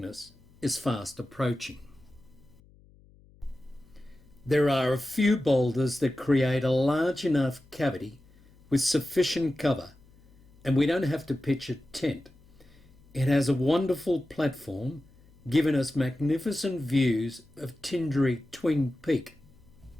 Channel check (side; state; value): left; noise; hum, 27 dB below the sound